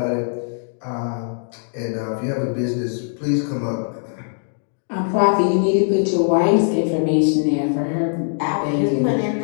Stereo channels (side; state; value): right; silent; digital silence